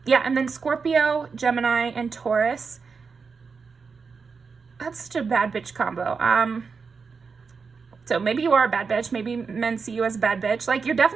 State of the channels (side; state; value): left; quieter; 5.2 dB